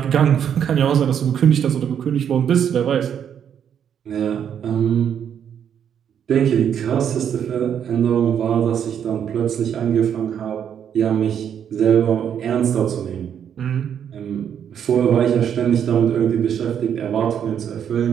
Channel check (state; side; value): quieter; left; 8.6 dB